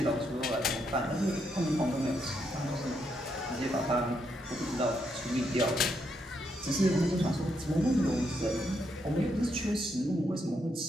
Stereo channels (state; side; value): normal; both; correlation 0.78